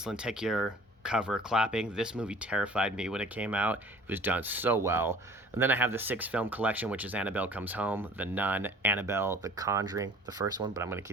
lenticular cover clapping. This movie terrified me when it came out. It was done so well. And then I have the 6-film collection, which is Annabelle Comes Home, The Nun, Annabelle, The Conjuring, the first one, but I'm going to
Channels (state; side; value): normal; both; correlation 0.48